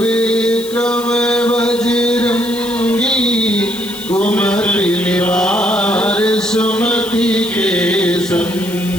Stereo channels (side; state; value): left; noise; hiss, 14 dB below the sound